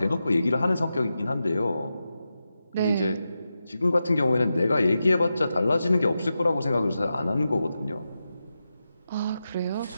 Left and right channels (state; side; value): inverted; both; correlation -0.90